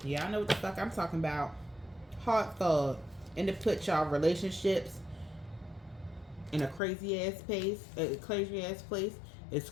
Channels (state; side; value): drops out; right; at 6.8 s